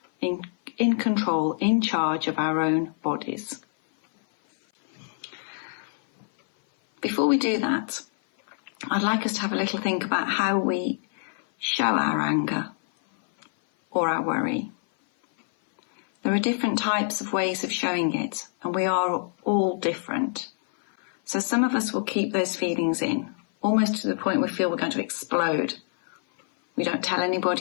in control, in charge of our own bodies. Before we do that, I'd like us to have a little think about how we show our anger or our worry. There are different types of ways of showing it, and we are all different. So some of us will keep those feelings in, almost to the point we feel we're going to explode. We don't tell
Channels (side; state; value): right; silent; 57 dB below the other